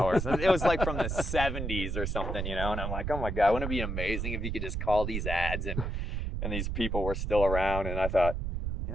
It was like from the 70s or something, you know, and I'm like, oh my God, wouldn't it be amazing if you could just call these ads and these people were still around? And I thought, you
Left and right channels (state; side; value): noise; right; rumble, 2 dB below the sound